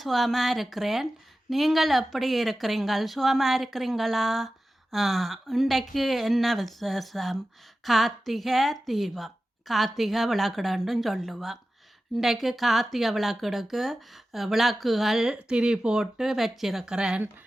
சுகமாக இருக்கிறேன். நீங்கள் எப்படி இருக்கிறீங்கள்? சுகமாக இருக்கிறீங்களா? இன்றைக்கு என்ன விசேஷம்? கார்த்திகை தீபம், கார்த்திகை விளக்குடன்றும் சொல்லுவோம். இன்றைக்கு கார்த்திகை விளக்குடுக்கு விளக்குகள் திரி போட்டு வச்சிருக்கிறேன்.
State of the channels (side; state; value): both; normal; correlation 0.94